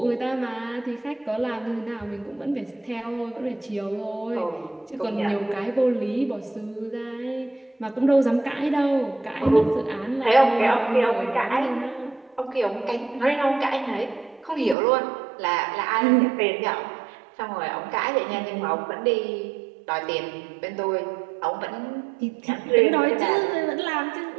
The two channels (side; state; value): left; drops out; at 14.8 s